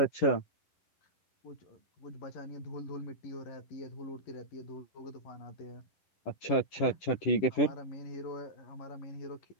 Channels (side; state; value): right; late; 10 ms